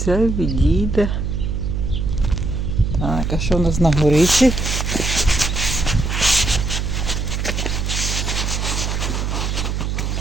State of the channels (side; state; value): right; noise; hum, 1 dB below the sound